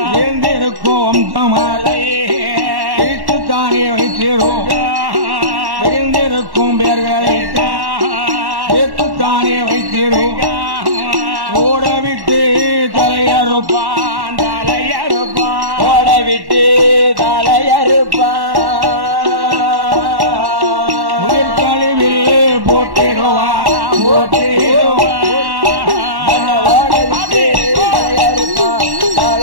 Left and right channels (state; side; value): late; left; 1.1 ms